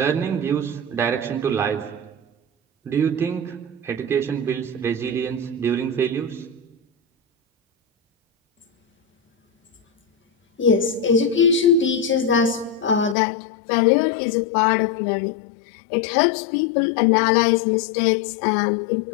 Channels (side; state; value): right; drops out; at 13.2 s